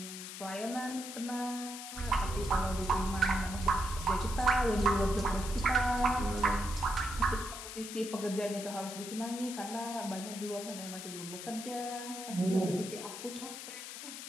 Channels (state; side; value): noise; left; hiss, 9 dB below the sound